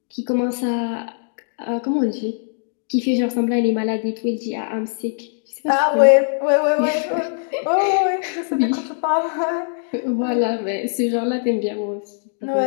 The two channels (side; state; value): right; silent; digital silence